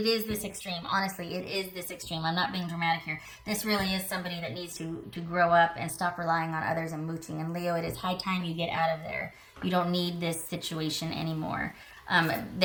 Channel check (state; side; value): identical; both; correlation 1.00